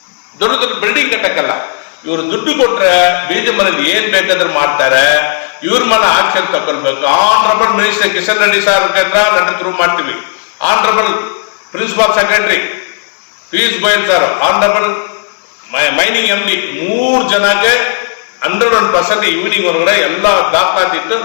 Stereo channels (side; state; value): right; silent; digital silence